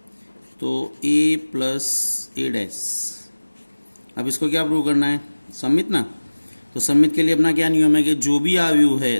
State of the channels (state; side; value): inverted; both; correlation -1.00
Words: तो a + a डैश। अब इसको क्या प्रूव करना है? सम्मित ना। तो सम्मित के लिए अपना क्या नियम है कि जो भी अवयव है